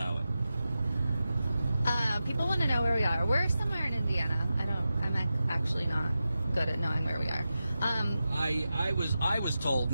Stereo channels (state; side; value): inverted; both; correlation -0.91